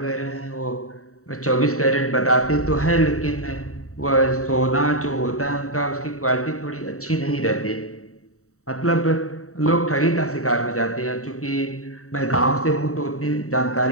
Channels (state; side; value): late; right; 0.64 ms